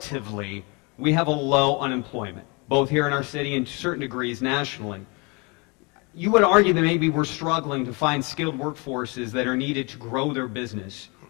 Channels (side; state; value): right; quieter; 29.7 dB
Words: we have a low unemployment, both here in our city and to certain degrees nationally. You would argue that maybe we're struggling to find skilled workforces that are needed to grow their business.